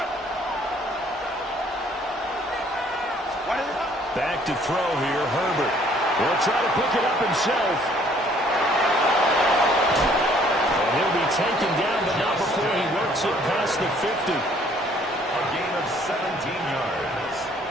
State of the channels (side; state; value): both; normal; correlation 0.60